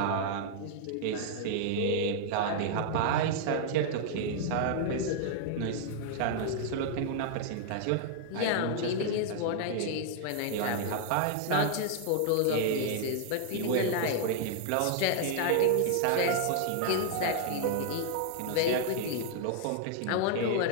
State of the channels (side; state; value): both; different; correlation -0.01